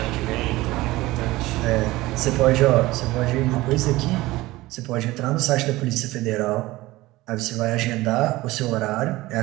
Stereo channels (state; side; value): quieter; left; 18.8 dB